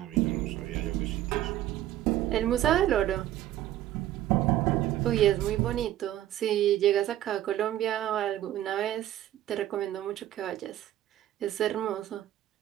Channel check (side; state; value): left; quieter; 13.1 dB